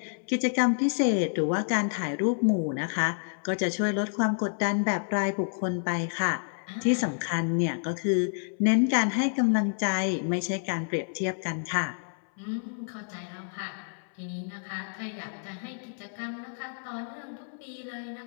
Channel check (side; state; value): right; silent; 59 dB below the other